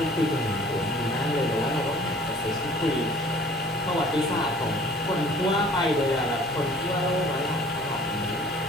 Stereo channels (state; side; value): normal; both; correlation 0.51